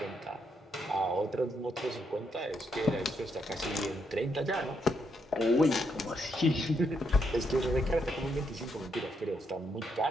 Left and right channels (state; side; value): normal; both; correlation 0.77